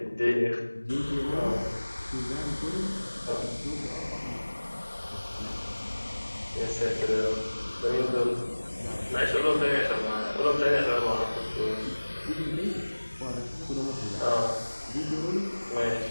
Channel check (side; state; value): both; inverted; correlation -1.00